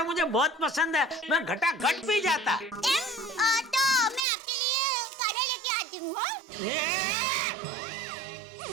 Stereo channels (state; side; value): drops out; left; at 4.2 s